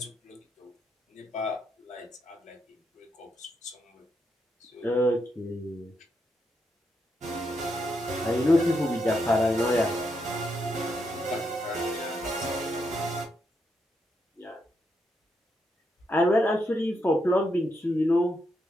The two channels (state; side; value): normal; both; correlation 0.81